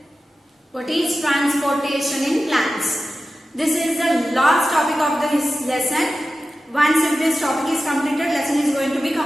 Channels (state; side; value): normal; both; correlation 0.93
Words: What is transportation in plants? This is the last topic of this lesson. Once if this topic is completed, lesson is going to be